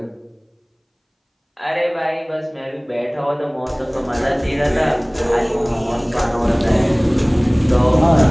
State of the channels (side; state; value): both; identical; correlation 1.00